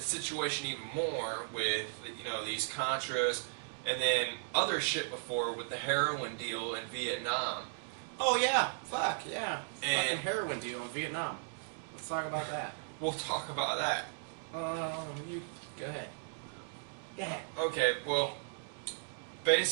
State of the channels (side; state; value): left; silent; digital silence